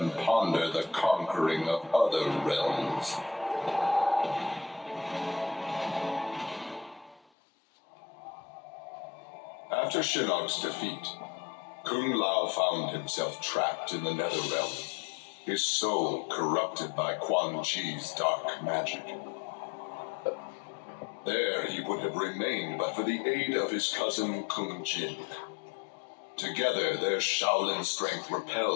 ponder the conquering of other realms. After Shinnok's defeat, Kung Lao found himself trapped in the Netherrealm, his soul corrupted by Quan Chi's dark magic. There he would have remained but for the aid of his cousin Kung Jin. Together, their Shaolin strength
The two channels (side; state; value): right; drops out; at 7.2 s